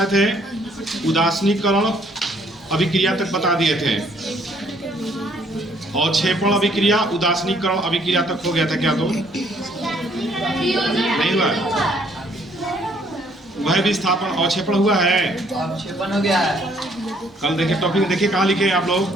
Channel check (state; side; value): normal; both; correlation 0.65